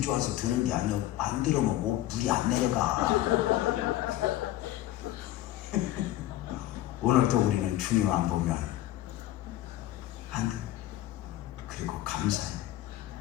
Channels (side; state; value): right; quieter; 14.5 dB